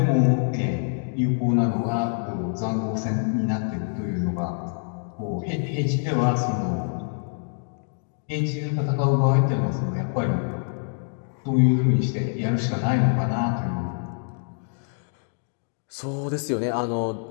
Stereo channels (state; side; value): silent; right; digital silence